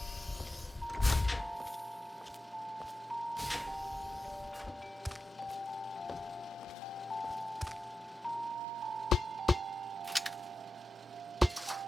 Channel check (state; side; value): normal; both; correlation 0.91